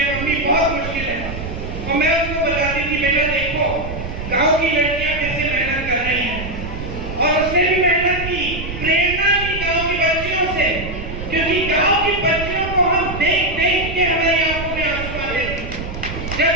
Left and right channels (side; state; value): right; noise; rumble, 8 dB below the sound